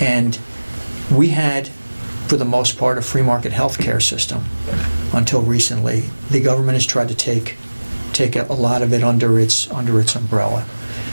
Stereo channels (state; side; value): inverted; both; correlation -1.00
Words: we had, for the most part, a free market healthcare system until recently. The government has tried to take a lot of it under its umbrella.